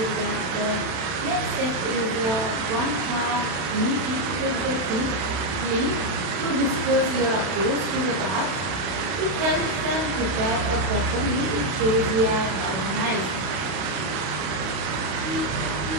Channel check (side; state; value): left; late; 31 ms